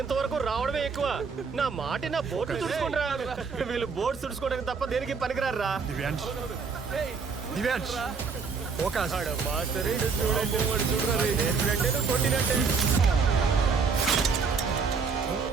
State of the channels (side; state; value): left; quieter; 5.3 dB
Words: రావడమే ఎక్కువ. నా మాట నా బోట్లు తుడుచుకుంటా. వీళ్ళు బోట్ తుడుచుకోవడానికి తప్ప దేనికి పనికిరారా. దివ్యాంష్ దివ్యాంష్ ఫోకస్. కొట్టినట్టే.